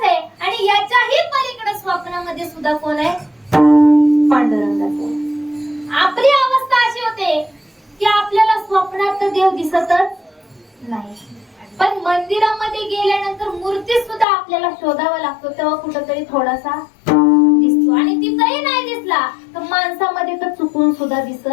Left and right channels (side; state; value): right; drops out; at 14.2 s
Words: आहे आणि याच्याही पलीकडे स्वप्नामध्ये सुद्धा कोण आहे? पांडुरंगच आहे. आपली अवस्था अशी होते की आपल्याला स्वप्नात तर देव दिसतच नाही, पण मंदिरामध्ये गेल्यानंतर मूर्ती सुद्धा आपल्याला शोधावा लागतो, तेव्हा कुठेतरी थोडासा दिसतो. आणि तिथंही नाही दिसला तर माणसामध्ये तर चुकून सुद्धा दिसत